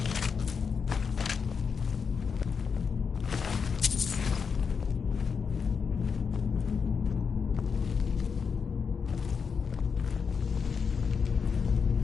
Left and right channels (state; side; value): quieter; right; 5.9 dB